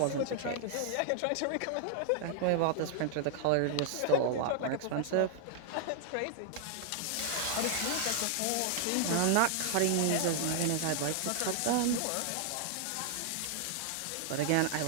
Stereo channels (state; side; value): different; both; correlation 0.00